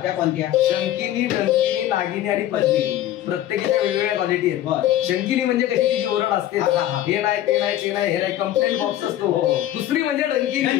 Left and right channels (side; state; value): right; quieter; 12.8 dB